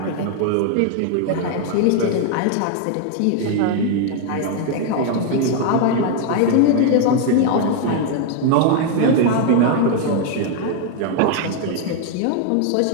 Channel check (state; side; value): different; both; correlation 0.00